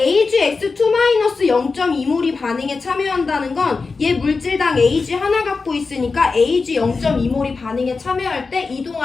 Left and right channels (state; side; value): quieter; right; 4.3 dB